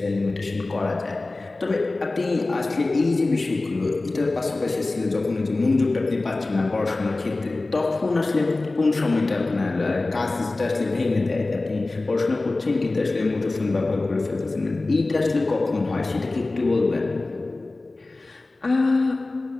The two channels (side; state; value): right; quieter; 3.2 dB